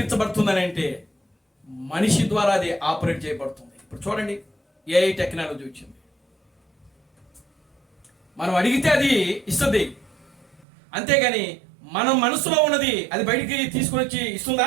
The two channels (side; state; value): left; drops out; at 10.7 s